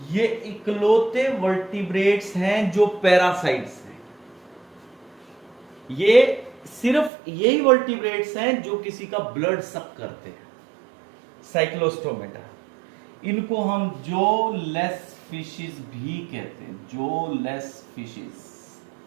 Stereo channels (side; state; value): left; drops out; at 7.1 s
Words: ये इकलौते वर्टिब्रेट्स हैं जो पैरासाइट्स हैं। ये सिर्फ यही वर्टिब्रेट्स हैं जो किसी का ब्लड सक करते हैं, साइक्लोस्टोमेटा। इनको हम जो लेस फिशेस भी कहते हैं, जो लेस फिशेस,